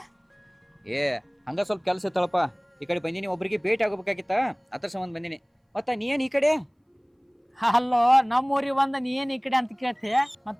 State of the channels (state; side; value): identical; both; correlation 1.00